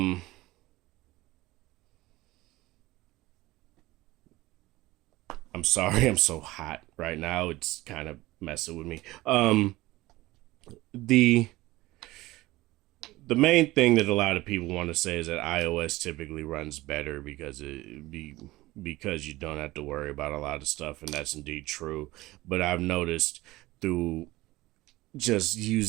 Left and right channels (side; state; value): left; quieter; 18.7 dB